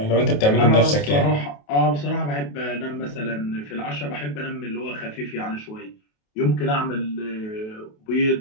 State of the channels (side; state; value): right; late; 28 ms